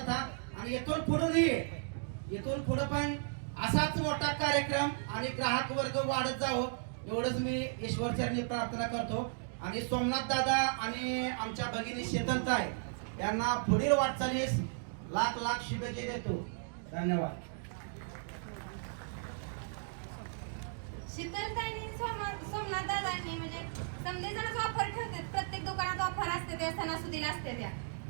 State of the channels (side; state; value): left; silent; digital silence